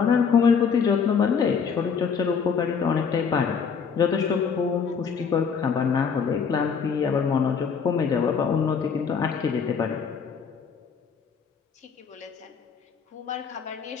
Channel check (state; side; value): quieter; right; 6.3 dB